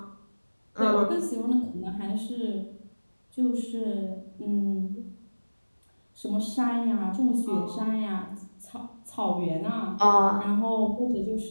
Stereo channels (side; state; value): both; inverted; correlation -1.00